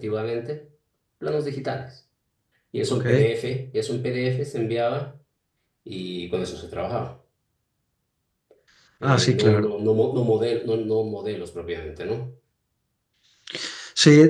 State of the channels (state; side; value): identical; both; correlation 1.00